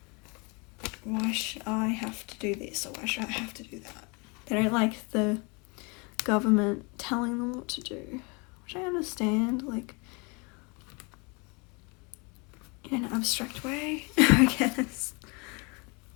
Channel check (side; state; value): right; quieter; 30.6 dB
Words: why should I have to do this, or why should I have to do that? They don't like the government telling them what to do, which I understand, like, in an abstract way, I guess.